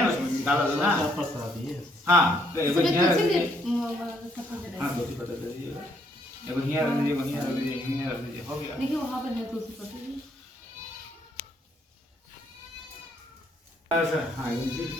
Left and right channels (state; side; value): normal; both; correlation 0.70